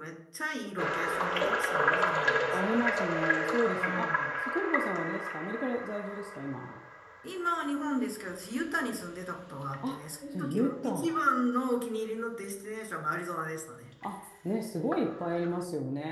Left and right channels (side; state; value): both; identical; correlation 1.00